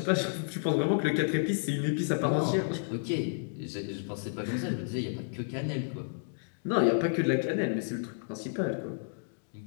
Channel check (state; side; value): silent; right; digital silence